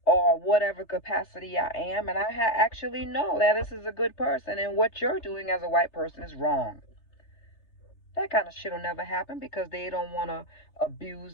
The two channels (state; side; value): late; right; 3.3 ms